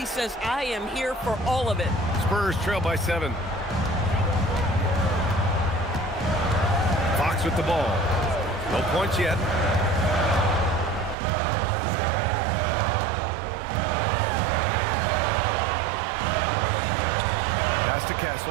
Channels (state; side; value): drops out; left; at 11.2 s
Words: says, I am here for all of it. Spurs trail by 7. Fox with the ball. No points yet. Pass to